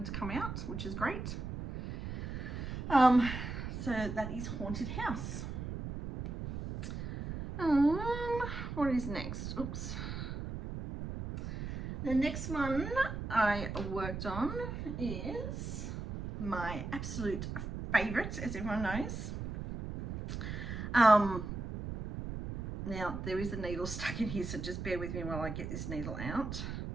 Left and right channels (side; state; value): right; noise; rumble, 6 dB below the sound